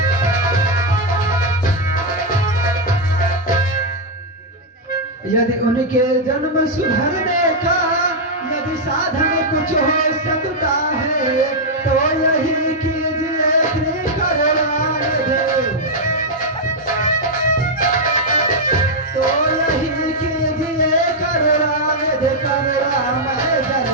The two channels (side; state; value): both; normal; correlation -0.01